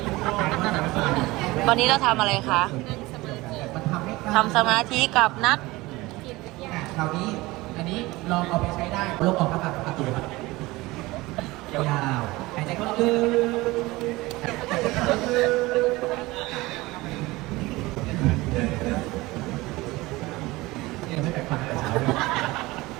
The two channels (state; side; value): quieter; left; 20.6 dB